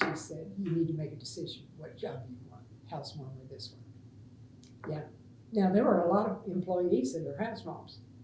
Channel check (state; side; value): identical; both; correlation 1.00